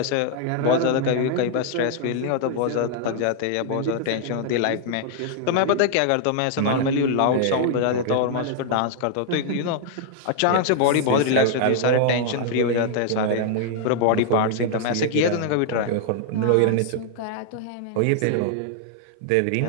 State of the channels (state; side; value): different; both; correlation -0.01